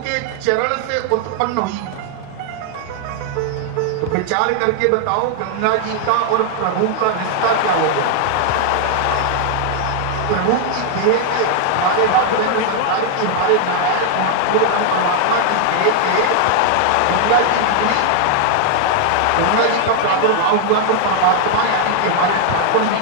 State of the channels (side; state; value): both; different; correlation 0.00